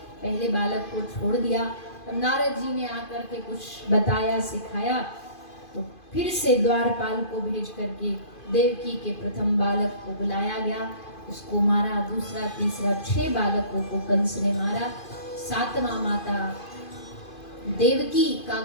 पहले बालक को छोड़ दिया। तब नारद जी ने आकर के कुछ बताया सिखाया, तो फिर से द्वारपाल को भेज करके देवकी के प्रथम बालक को बुलाया गया, उसको मारा। दूसरा तीसरा 6 बालकों को कंस ने मारा। 7वां माता देवकी का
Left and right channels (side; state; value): right; late; 2.5 ms